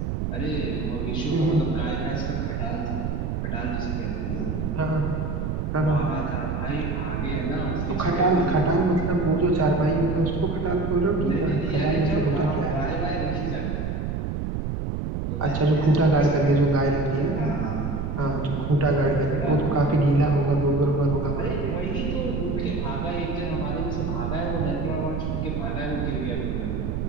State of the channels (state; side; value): noise; right; rumble, 2 dB below the sound